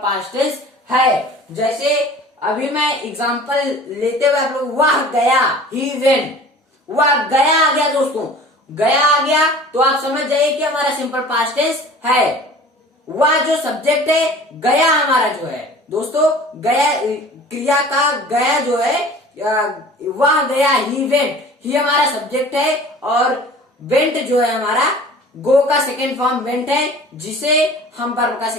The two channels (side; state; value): both; normal; correlation 0.44